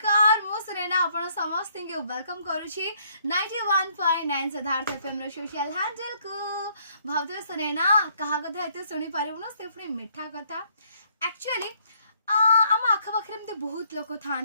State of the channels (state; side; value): inverted; both; correlation -0.67